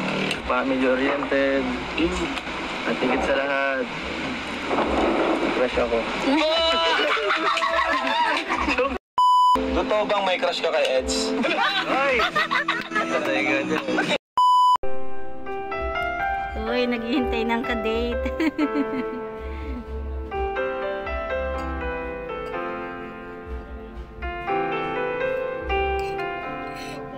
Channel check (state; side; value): identical; both; correlation 1.00